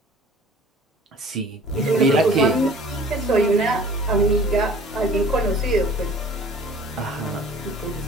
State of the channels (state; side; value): normal; both; correlation 0.47